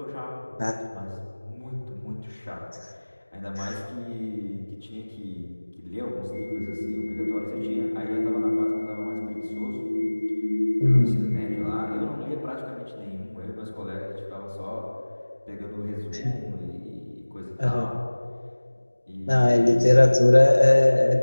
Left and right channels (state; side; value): inverted; both; correlation -1.00